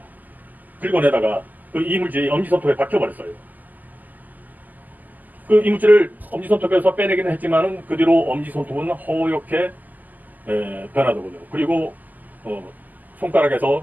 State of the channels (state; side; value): late; left; 0.083 ms